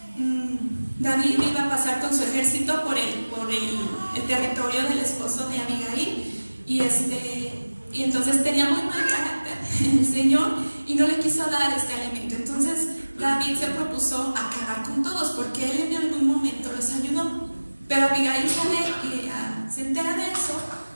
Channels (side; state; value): both; inverted; correlation -1.00